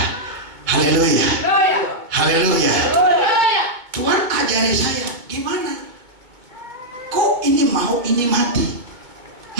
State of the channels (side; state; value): left; late; 2.2 ms